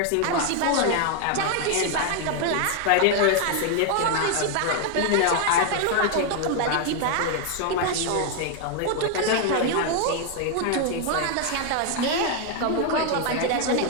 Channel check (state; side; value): different; both; correlation 0.00